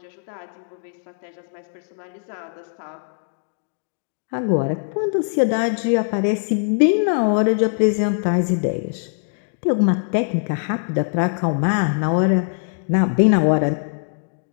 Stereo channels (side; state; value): right; silent; digital silence